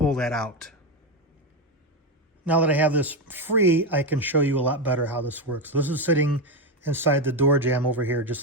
that out. Now that I have this free, I can show you a lot better how this works. This is sitting inside the door jamb over here,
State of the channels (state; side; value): normal; both; correlation 0.11